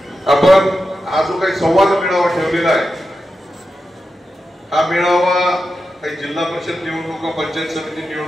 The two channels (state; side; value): normal; both; correlation 0.90